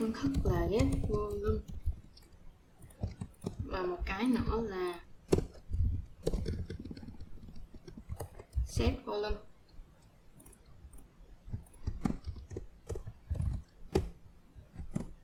thức là get volume và một cái nữa là set volume.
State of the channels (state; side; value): identical; both; correlation 1.00